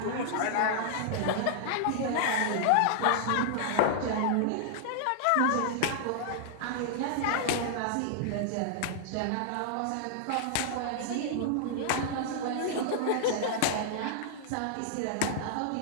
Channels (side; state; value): both; different; correlation -0.01